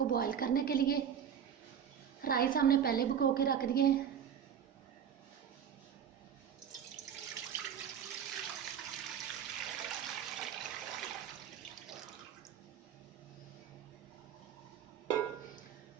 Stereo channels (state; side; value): quieter; left; 8.5 dB